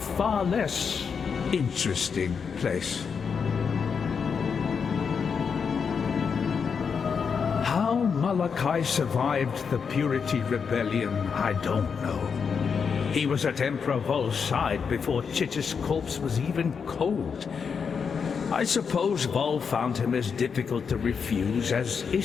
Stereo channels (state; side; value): quieter; right; 6.2 dB